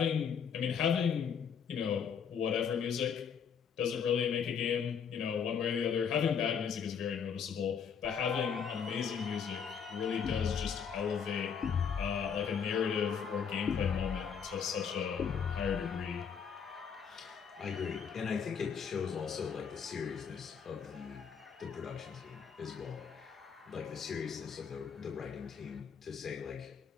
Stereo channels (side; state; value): right; quieter; 7.0 dB